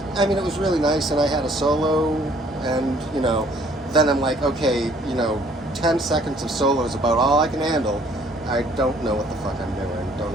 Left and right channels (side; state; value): both; normal; correlation 0.60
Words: I mean, it was really nice, and I had a solo, and, then I'm like, okay, 10 seconds of solo is about all I can handle. I don't know what the fuck I'm doing. Don't